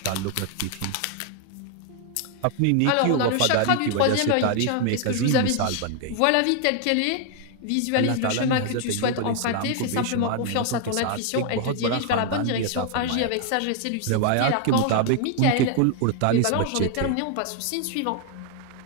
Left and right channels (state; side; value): different; both; correlation 0.00